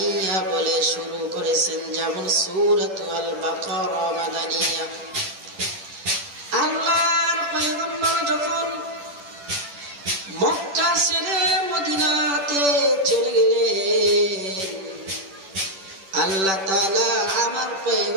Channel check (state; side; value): late; left; 10 ms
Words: বলে শুরু করেছেন, যেমন সূরাতুল বাকারা মাদানিয়া। আল্লাহর পয়গম্বর যখন মক্কা ছেড়ে মদিনাতে চলে গেলেন, আল্লাহ তাআলা আমার